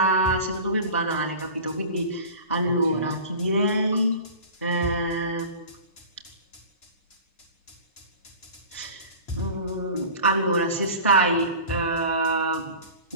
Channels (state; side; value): inverted; both; correlation -0.38